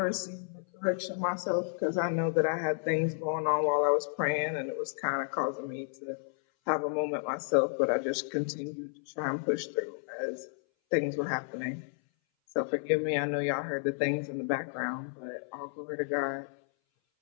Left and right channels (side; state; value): right; silent; 57 dB below the other